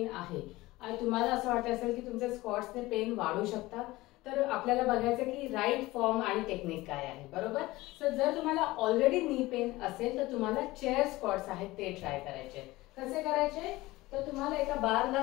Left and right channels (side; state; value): right; quieter; 19.2 dB